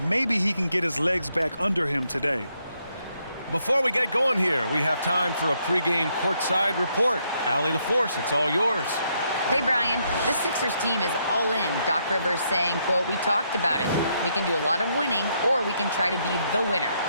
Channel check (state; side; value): inverted; both; correlation -0.75